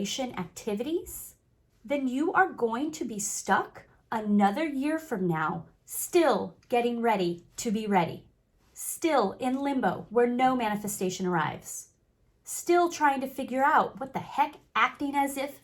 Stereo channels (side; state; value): both; identical; correlation 1.00